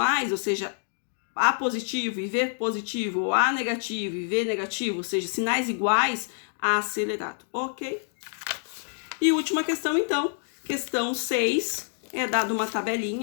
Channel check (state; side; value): silent; right; 60 dB below the other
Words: ou seja, A positivo e V positivo, ou A negativo e V negativo, ou seja, sinais iguais, acelerado, ok? E última questão, então, questão 6, é dado uma